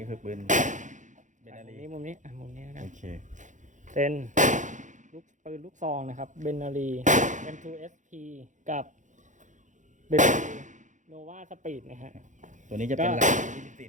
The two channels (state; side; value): late; left; 0.36 ms